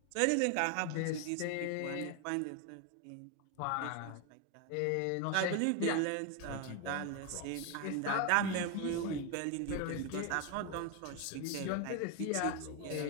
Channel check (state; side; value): different; both; correlation 0.01